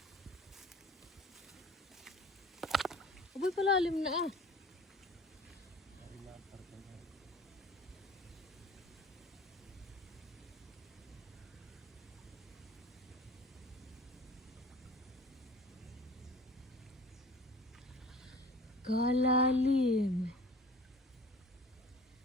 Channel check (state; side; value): normal; both; correlation 0.45